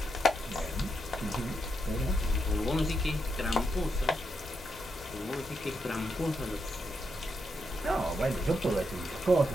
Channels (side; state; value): both; normal; correlation 0.83